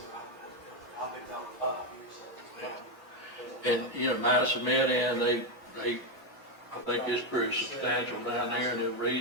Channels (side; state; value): both; normal; correlation 0.06